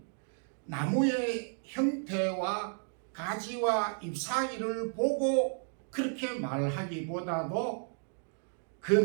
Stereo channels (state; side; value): silent; left; 56 dB below the other